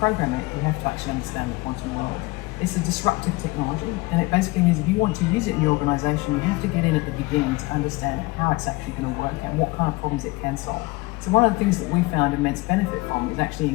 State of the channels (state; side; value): quieter; right; 22.9 dB